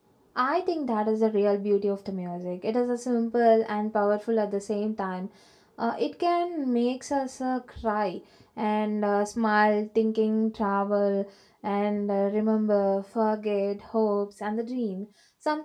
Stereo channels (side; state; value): both; identical; correlation 1.00